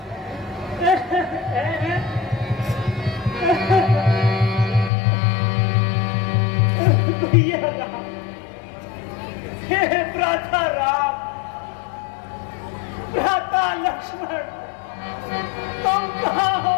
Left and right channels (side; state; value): right; drops out; at 4.9 s